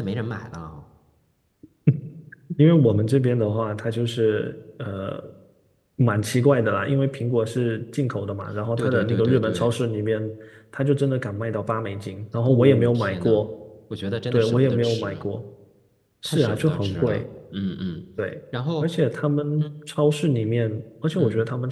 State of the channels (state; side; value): identical; both; correlation 1.00